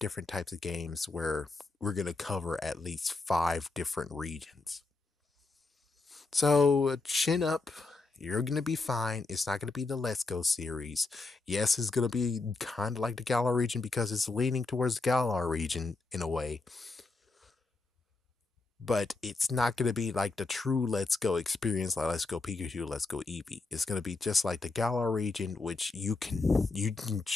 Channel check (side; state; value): right; quieter; 3.6 dB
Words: types of games where we're going to cover at least 5 different regions. So, chin up. You're going to be fine. It's not going to be the Let's Go series. Yes, it's going to be kind of like the Galar region because it's leaning towards the Galar region in a way. but it's not going to be like the true Let's Go experience, like Let's Go Pikachu, Let's Go Eevee. It's going to be just like the Galar region, which you can